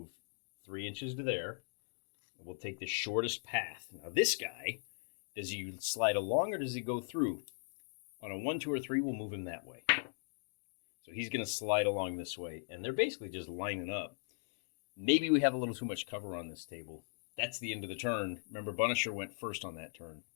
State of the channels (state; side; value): silent; right; digital silence